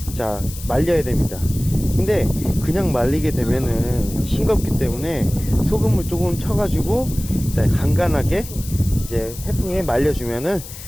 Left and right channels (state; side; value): noise; left; hiss, 14 dB below the sound